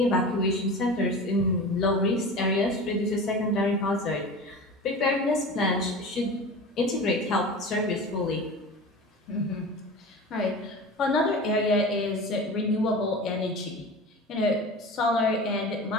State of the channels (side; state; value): both; normal; correlation 0.33